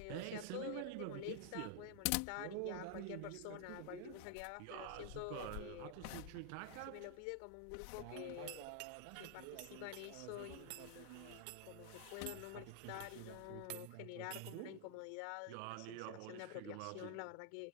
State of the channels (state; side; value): different; both; correlation 0.00